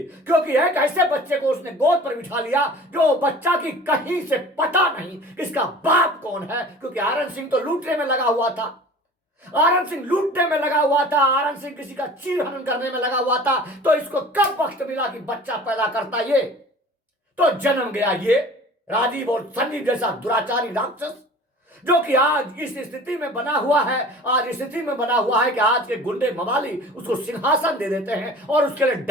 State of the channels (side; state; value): both; normal; correlation 0.43